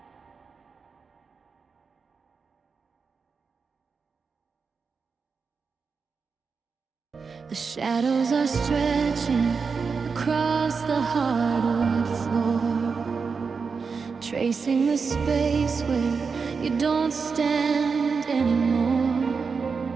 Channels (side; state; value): left; quieter; 5.2 dB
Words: The shadows are stretching across the hardwood floor, tracing the space where you don't stand anymore.